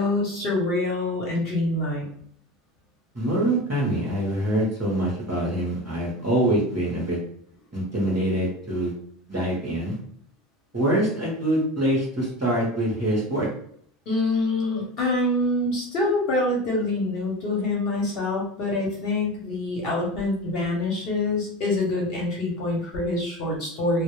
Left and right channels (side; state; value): both; normal; correlation 0.31